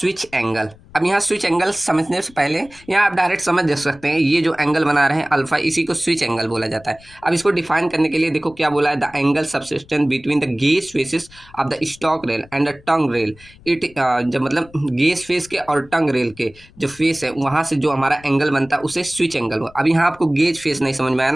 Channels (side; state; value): left; noise; rumble, 25 dB below the sound